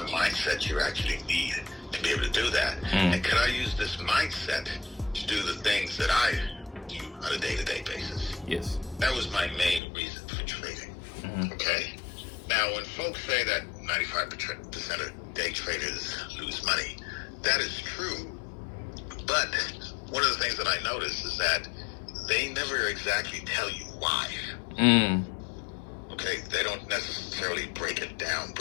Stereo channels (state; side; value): drops out; right; at 9.8 s